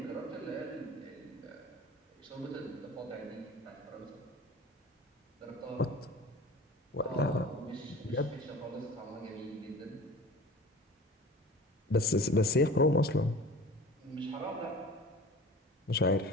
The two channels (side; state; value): both; normal; correlation 0.40